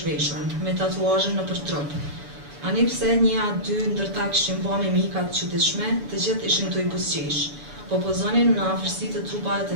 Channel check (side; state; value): left; late; 6.9 ms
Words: zhveshur, me tatuazhe në për trup. Ani pse një a dy ndërta kishin ba me mikat çuditshme, të gjithë ishin të i busqesh, po pozonin në afërsi të trupave të